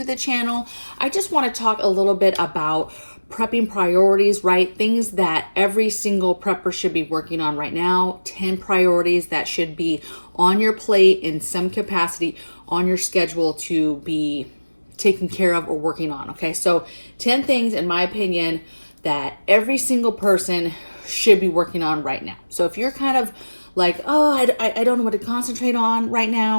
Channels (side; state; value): both; inverted; correlation -1.00